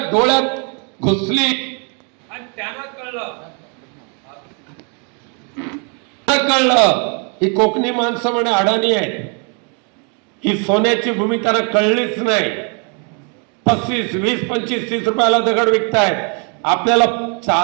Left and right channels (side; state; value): left; quieter; 37.5 dB